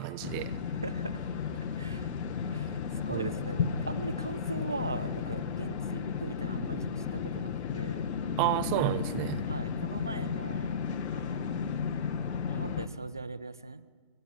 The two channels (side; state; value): both; inverted; correlation -0.37